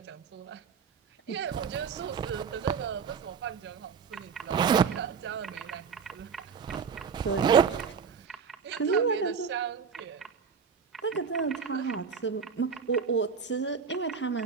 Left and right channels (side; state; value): left; quieter; 6.2 dB